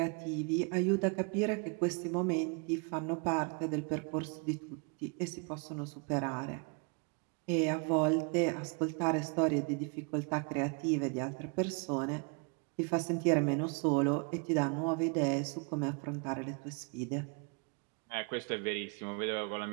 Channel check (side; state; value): left; quieter; 34.9 dB